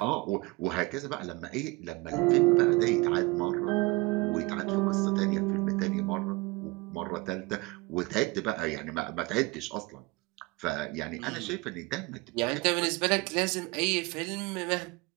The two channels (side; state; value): left; quieter; 24.3 dB